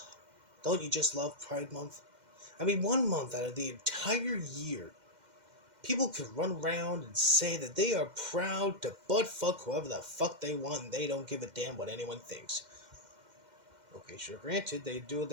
Don't you just love Pride Month? I mean, 1 month out of the entire year, people can run around and say that they are proud to butt fuck whoever the fuck they want and they don't give a damn what anyone thinks. Okay, sure, granted, they do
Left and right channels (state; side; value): late; left; 2.1 ms